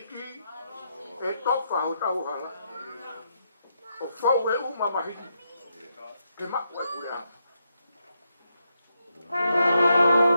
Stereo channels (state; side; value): inverted; both; correlation -0.82